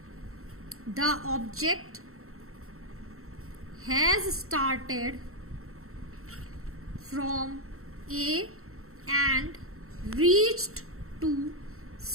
the object has started from A and reached to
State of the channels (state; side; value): late; left; 0.63 ms